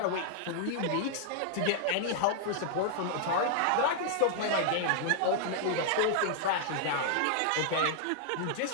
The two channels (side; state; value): both; different; correlation -0.01